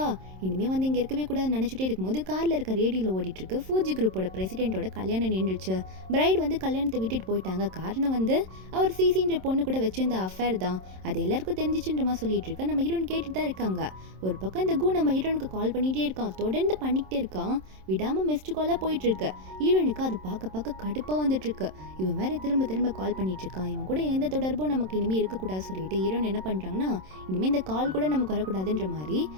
இனிமேல் வந்து இங்கே இருக்கவே கூடாதுன்னு நினச்சிட்டே இருக்கும்போது காரில் இருக்க ரேடியோவில் ஓடிட்டு இருக்கு, ஃபூஜி குரூப்போட பிரசிடென்ட்டோட கல்யாணம் நின்றுச்சு. பிரைட் வந்து கல்யாணத்தை விட்டுட்டு போயிட்டாங்க. காரணம் வந்து அவர் சிசின்ற பொண்ணு கூட வச்சிருந்த அஃபேர் தான், அது எல்லாருக்கும் தெரிஞ்சிச்சுன்ற மாதிரி சொல்லிட்டு இருக்கா. நம்ம ஹீரோன் கேட்டுட்டு தான் இருக்காங்க. ஒரு பக்கம் இந்த கு நம்ம ஹீரோனுக்கு கால் பண்ணிகிட்டே இருக்கான், தொடர்ந்து பண்ணிக்கிட்டே இருக்கான், விடாமல் மிஸ்டு காலாக போயிட்டு இருக்கு. ஹீரோனுக்கு அது பார்க்க கடுப்பாக வந்துட்டு இருக்கு. இவன் வேற திரும்ப கால் பண்ணிட்டு இருக்கான், இவன் கூட எந்த தொடர்பும் நமக்கு இனிமேல் இருக்கக்கூடாது சொல்லிட்டு ஹீரோன் என்ன பண்ணுறாங்கன்னா, இனிமேல் இந்த கால் கூட நமக்கு வரக்கூடாதுன்ற மாதிரி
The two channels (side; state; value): left; late; 27 ms